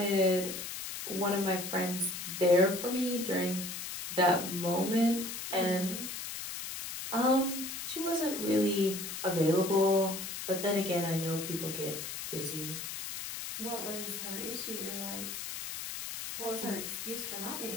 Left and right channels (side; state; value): left; noise; hiss, 7 dB below the sound